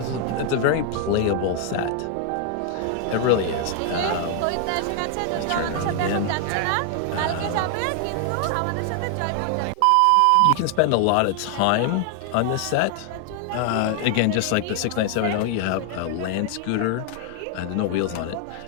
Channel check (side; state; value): both; different; correlation 0.00